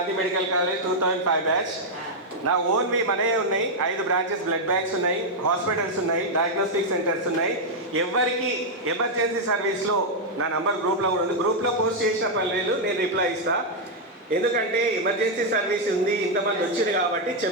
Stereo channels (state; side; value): normal; both; correlation -0.02